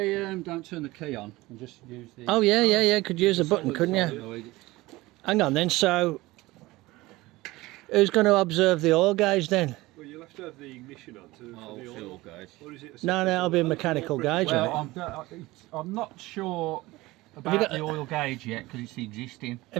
don't turn the key on and just use the... Oh yeah, could use a button, couldn't you? Hang on then, so who's going to observe the oil gauge then? Well, you'll have to have the ignition on for the oil gauge. Or is it No, it'll be a mechanical gauge. Well, I'm not sure about the oil gauge yet because it's existing.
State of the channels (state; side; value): quieter; left; 19.7 dB